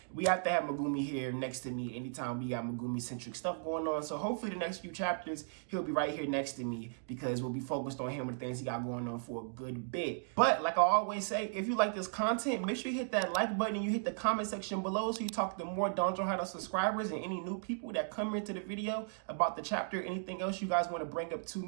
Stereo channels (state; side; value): silent; left; digital silence